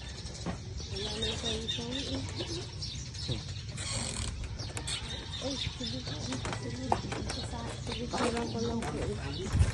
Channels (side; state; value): both; identical; correlation 1.00